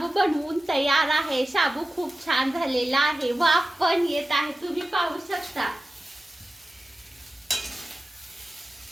बनवून तयार आहे. साबू खूप छान झालेला आहे. वाफ पण येत आहे. तुम्ही पाहू शकता.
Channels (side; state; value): both; normal; correlation 0.94